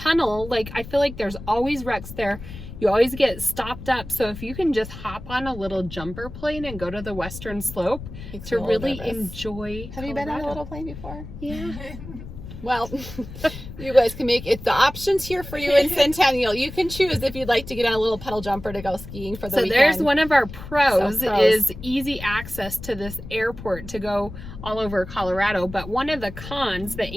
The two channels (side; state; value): left; noise; rumble, 12 dB below the sound